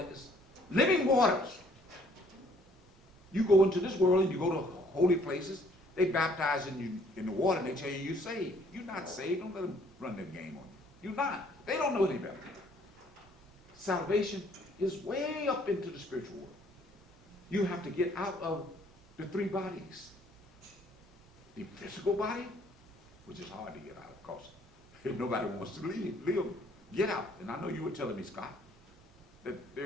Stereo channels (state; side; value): normal; both; correlation 0.61